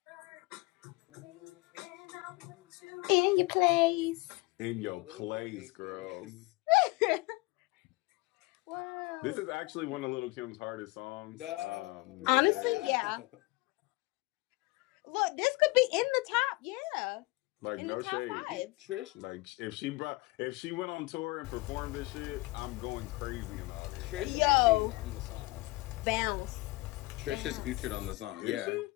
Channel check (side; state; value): right; quieter; 23.0 dB